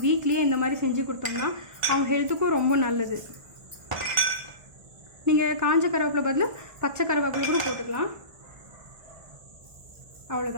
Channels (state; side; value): late; left; 1.5 ms